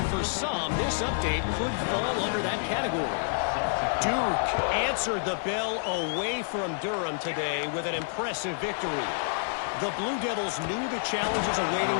for some, this update could fall under that category. Duke answered the bell away from Durham today with an impressive victory. The Blue Devils knew the challenges awaiting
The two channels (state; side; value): silent; right; digital silence